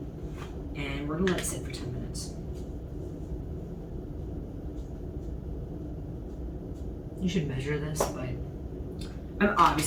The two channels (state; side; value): identical; both; correlation 1.00